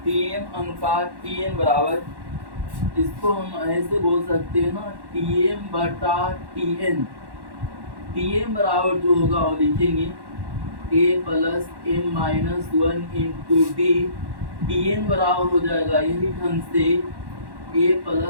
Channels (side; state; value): left; late; 1.1 ms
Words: टीएम अनुपात टीएन बराबर, इसको हम ऐसे बोल सकते हैं ना टीएम बटा टीएन। टीएम बराबर जो होगा वो लिखेंगे a plus m minus 1 into D. TN बराबर हो जाएगा यही ढंग से a